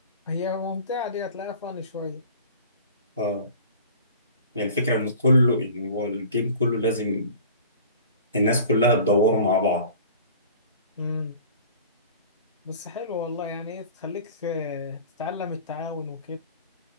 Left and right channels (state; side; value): inverted; both; correlation -0.43